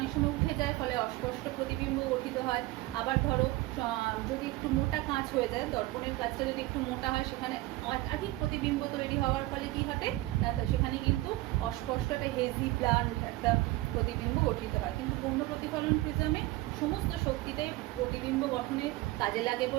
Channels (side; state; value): left; quieter; 18.9 dB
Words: সময় উঠে যায়, ফলে অস্পষ্ট প্রতিবিম্ব গঠিত হয়। আবার ধরো যদি একটু মোটা কাঁচ হয়ে যায়, দর্পণের কাঁচটা যদি একটু মোটা হয়, সেখানে একাধিক প্রতিবিম্ব তৈরি হওয়ার ফলে কি ঘটে? সেখানে কিন্তু অস্পষ্ট একটা হেজি ব্লান্ট একটা প্রতিবিম্ব গঠিত হয়। কিন্তু পূর্ণ প্রতিফলন প্রিজমে সমস্ত শক্তিটাই প্রতিবিম্ব গঠনে কাজে লাগে